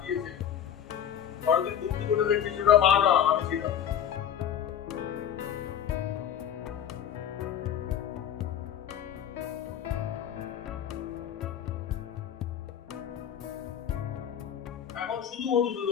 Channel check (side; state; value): right; quieter; 9.5 dB